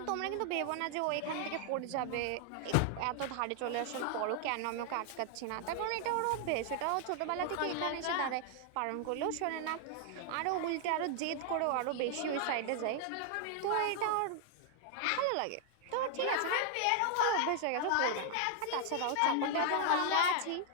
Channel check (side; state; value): both; different; correlation 0.00